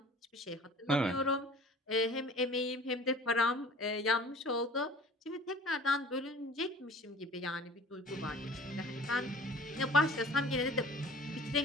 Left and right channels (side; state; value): both; normal; correlation 0.46